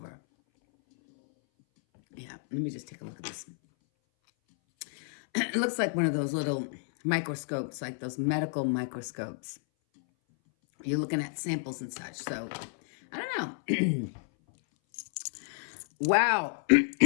Yeah, let me just take a look at this. It looks like one of those little microscopes, like those medical microscopes. You're looking at samples and such. So, I don't know. Wow.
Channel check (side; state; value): right; silent; 57 dB below the other